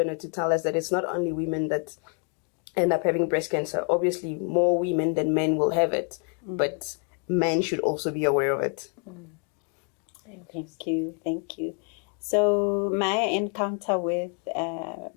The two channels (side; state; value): right; quieter; 38.0 dB